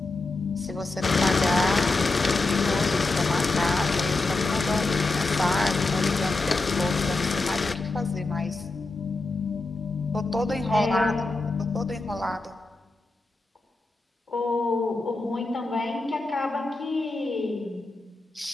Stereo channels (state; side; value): quieter; right; 3.3 dB